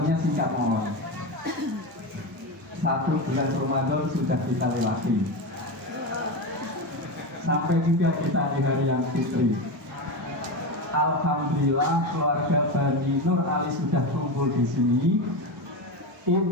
singkat mohon. 1 bulan Ramadan sudah kita lewati, sampai juga kita di hari yang fitri. Alhamdulillah keluarga Bani Nur Ali sudah kumpul di sini.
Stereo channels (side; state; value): both; normal; correlation 0.18